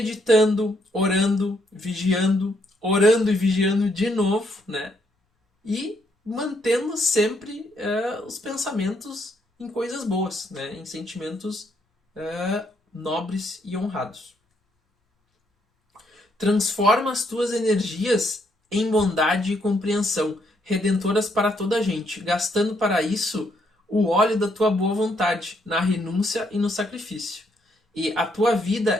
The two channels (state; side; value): normal; both; correlation 0.73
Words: orando e vigiando de novo, né? E mantendo sempre os pensamentos em coisas boas, né? Em sentimentos nobres e honrados. Transforma as tuas energias em bondade e compreensão, redentoras para toda a gente, gastando para isso o óleo da tua boa vontade, na renúncia e no sacrifício. E a tua